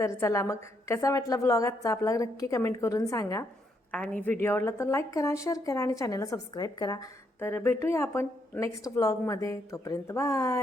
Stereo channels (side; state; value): both; normal; correlation 0.75